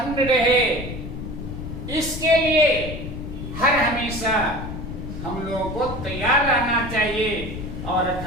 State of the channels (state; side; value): noise; left; rumble, 8 dB below the sound